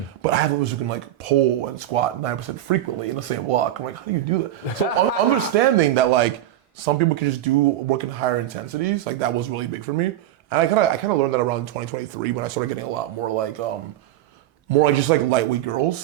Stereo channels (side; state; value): left; quieter; 13.0 dB